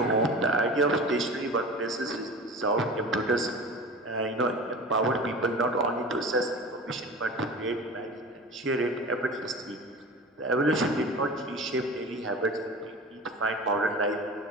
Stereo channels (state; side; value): normal; both; correlation 0.35